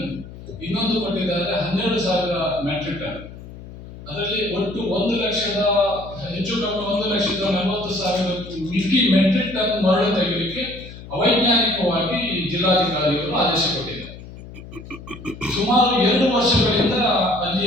ಇನ್ನೊಂದು ಕೊಟ್ಟಿದ್ದಾರೆ 12,000 ಮೆಟ್ರಿಕ್ ಟನ್. ಅದರಲ್ಲಿ ಒಟ್ಟು 1,00,000 ಹೆಚ್ಚು ಕಮ್ಮಿ 1,40,000 ಮೆಟ್ರಿಕ್ ಟನ್ ಮರಳು ತೆಗೆಯಲಿಕ್ಕೆ ಅವೈಜ್ಞಾನಿಕವಾಗಿ ಜಿಲ್ಲಾಧಿಕಾರಿಗಳು ಆದೇಶ ಕೊಟ್ಟಿದ್ದಾರೆ. ಸುಮಾರು 2 ವರ್ಷಗಳಿಂದ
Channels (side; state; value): left; noise; hum, 15 dB below the sound